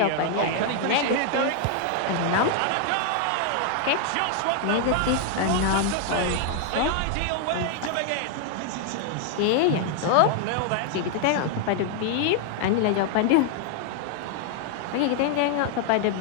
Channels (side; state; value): both; different; correlation 0.00